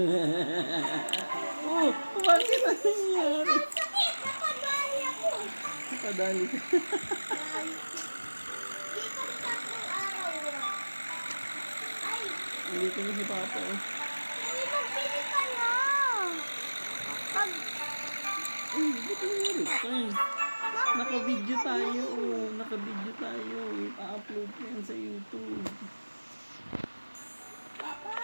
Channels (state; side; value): inverted; both; correlation -1.00